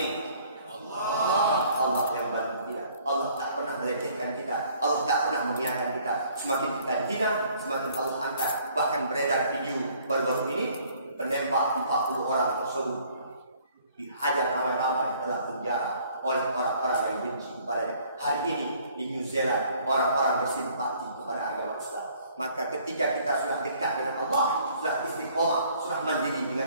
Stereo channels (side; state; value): both; inverted; correlation -0.59